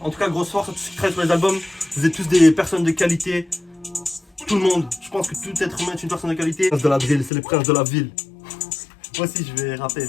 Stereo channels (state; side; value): drops out; right; at 7.3 s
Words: En tout cas, grosse force à tous ceux qui travaillent sur les albums. Vous êtes tous des personnes de qualité. Tout le monde. Je pense que tout être humain est une personne de qualité. Prince de la Drill, c'est les princes de la ville. Moi aussi, je vais rapper